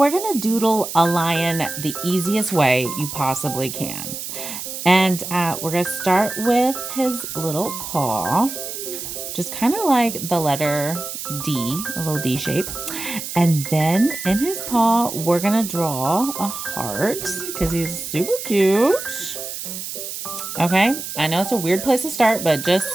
gonna doodle a lion the easiest way you possibly can. And we're gonna start with his little paw, just kind of like the letter D, a little D shape. And then in his paw, we're gonna draw a heart because he's super cute. Okay, I know it's a weird place to start, but just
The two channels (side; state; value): right; noise; hiss, 7 dB below the sound